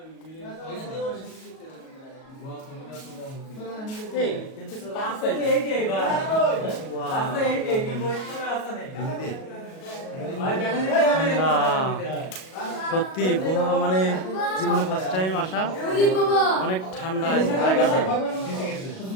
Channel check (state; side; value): late; right; 37 ms